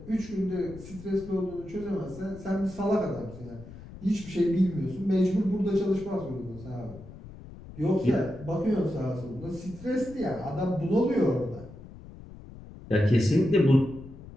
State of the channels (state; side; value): noise; left; rumble, 16 dB below the sound